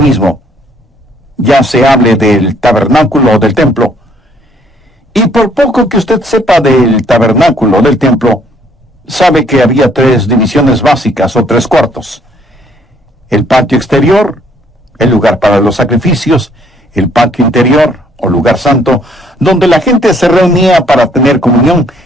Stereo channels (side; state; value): both; normal; correlation 0.65